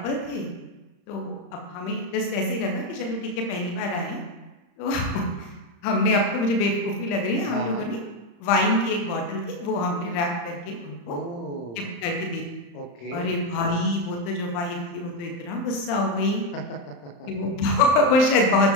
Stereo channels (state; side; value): late; right; 35 ms